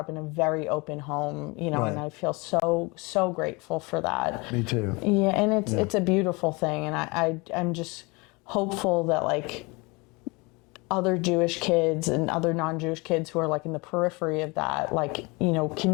in a very open home, you know, and I feel so grateful for that. Me too. Yeah, and it's a beautiful thing, and I'm just hopeful that like other Jewish kids and other non-Jewish kids who are like in the periphery of that, like, you know,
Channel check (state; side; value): quieter; right; 26.7 dB